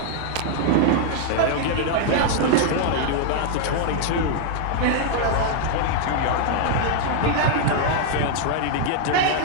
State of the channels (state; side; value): different; both; correlation 0.00